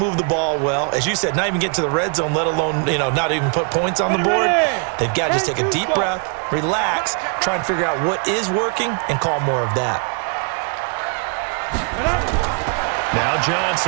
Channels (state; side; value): quieter; left; 38.9 dB